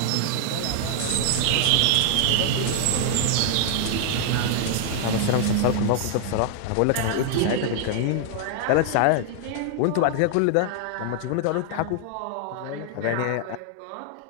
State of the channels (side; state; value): both; different; correlation 0.00